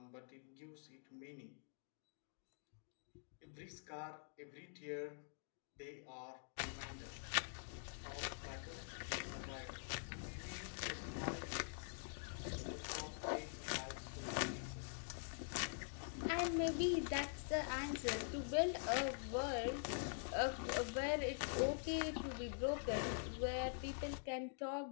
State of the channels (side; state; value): right; silent; digital silence